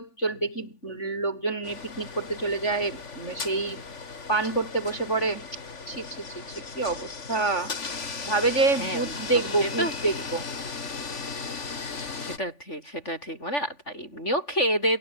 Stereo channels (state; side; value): late; right; 3.5 ms